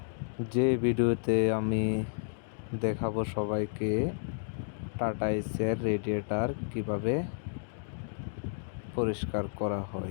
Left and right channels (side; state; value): right; silent; digital silence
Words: যে ভিডিওতে আমি দেখাবো সবাইকে টাটা এসির রেডিয়েটর কিভাবে পরিষ্কার করা